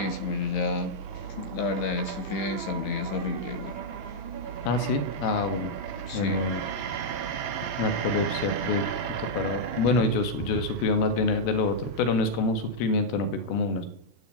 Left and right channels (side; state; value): right; late; 15 ms